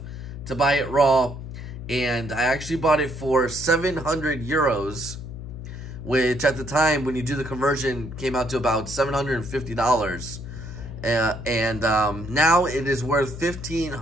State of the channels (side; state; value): left; noise; hum, 10 dB below the sound